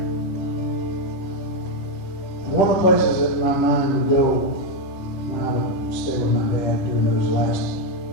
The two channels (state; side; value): late; right; 11 ms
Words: One of the places that my mind would go when I would stay with my dad during those last